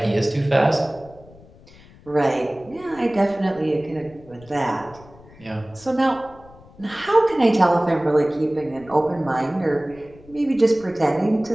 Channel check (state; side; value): noise; left; rumble, 23 dB below the sound